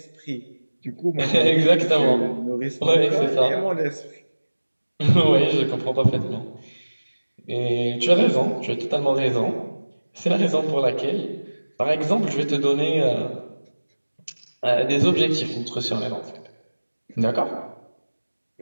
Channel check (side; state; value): both; inverted; correlation -1.00